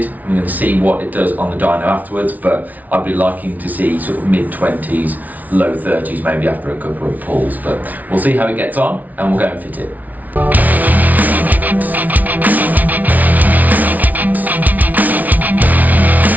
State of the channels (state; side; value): late; left; 0.076 ms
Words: I'm going to see what it does on the dyno afterwards, but I'd be liking to see sort of mid-20s, low 30s maybe after a couple of pulls. But we'll see how it gets on, and we'll go and fit it.